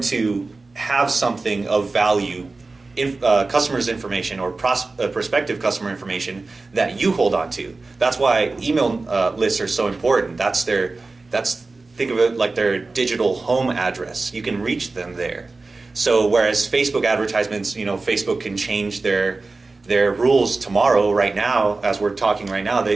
to have something of value, customers' information or prospective customer information that you hold on to. That's why email lists are so important. Think of it like their digital home address. You can reach them there. So whereas Facebook advertisements, Facebook can change their rules tomorrow, right now, as we're talking right now,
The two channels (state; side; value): quieter; left; 3.6 dB